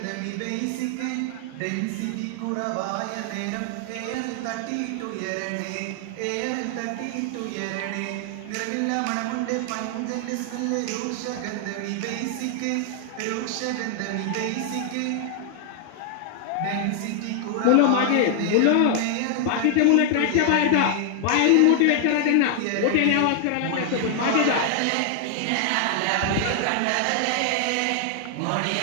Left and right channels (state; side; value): different; both; correlation 0.00